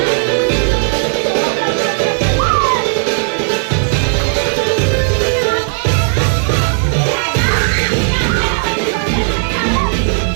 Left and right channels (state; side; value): silent; left; digital silence